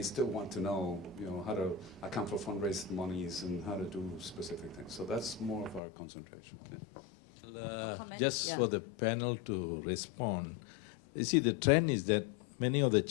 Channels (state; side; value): drops out; right; at 5.8 s